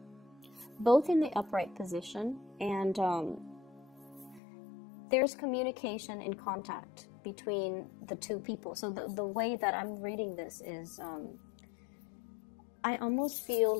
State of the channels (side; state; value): right; drops out; at 4.4 s